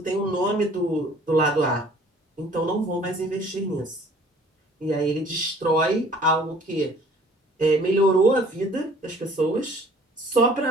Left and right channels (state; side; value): normal; both; correlation 0.53